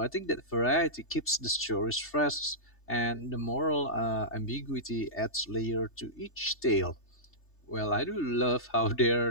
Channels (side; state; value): right; late; 3.3 ms